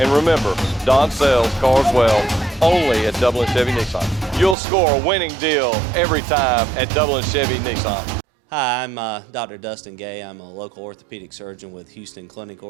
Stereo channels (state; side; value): drops out; left; at 4.5 s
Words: And remember, Don sells cars well only at Dublin Chevy Nissan. You'll score a winning deal every time at Dublin Chevy Nissan. Hi, I'm Dr. Dustin Gay. I'm a local orthopedic surgeon with Houston Clinic